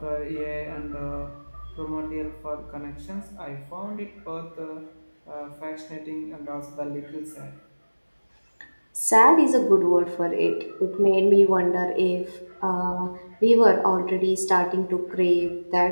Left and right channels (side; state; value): both; inverted; correlation -1.00